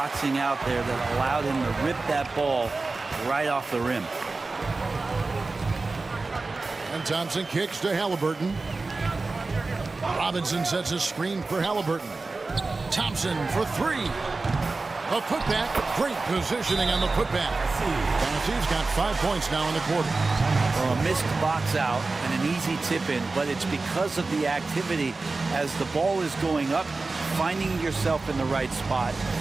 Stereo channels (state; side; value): quieter; left; 3.6 dB